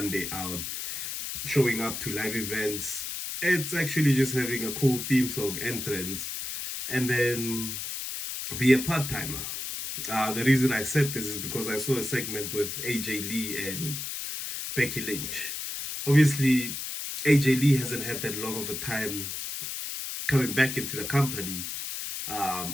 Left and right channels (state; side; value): noise; left; hiss, 5 dB below the sound